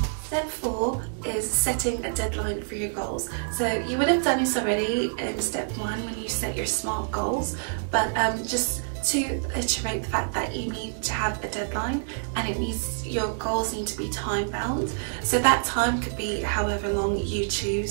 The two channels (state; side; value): silent; left; digital silence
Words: Step 4 is setting a deadline for your goals. So you would have done this already in step 1 when you set your SMART goals, but just to iterate the fact that you need to have a deadline, and it needs, your goals need to be time bound. So that time could be however long you